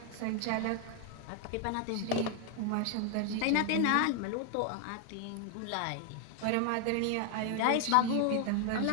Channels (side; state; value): both; different; correlation 0.00